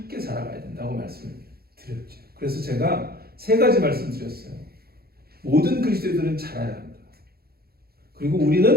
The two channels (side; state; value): left; late; 0.45 ms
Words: 살아가야 된다고 말씀을 드렸죠. 그래서 제가 세 가지 말씀 드렸어요. 모든 그리스도인들은 자라야 한다. 그리고